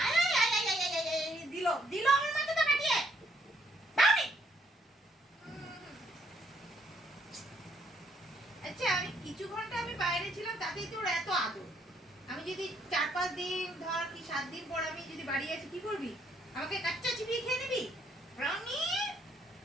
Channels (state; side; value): normal; both; correlation 0.70